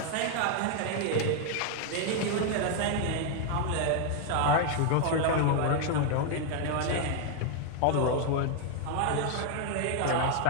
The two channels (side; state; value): both; different; correlation 0.00